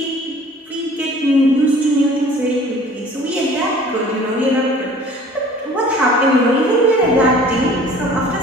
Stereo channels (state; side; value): normal; both; correlation 0.49